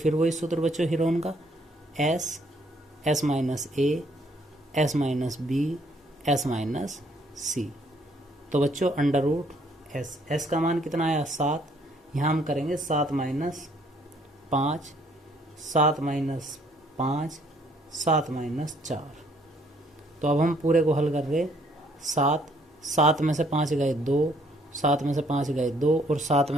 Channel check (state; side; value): normal; both; correlation 0.65